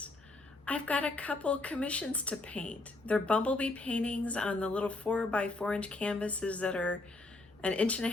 I've got a couple commissions to paint. They're Bumblebee paintings on the little 4x4 inch canvases that are an inch and a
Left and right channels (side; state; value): right; quieter; 3.0 dB